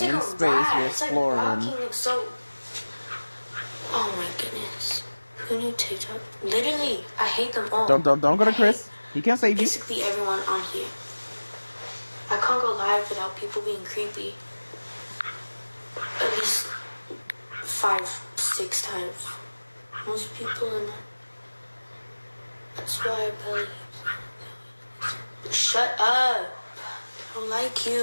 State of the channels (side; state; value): both; inverted; correlation -1.00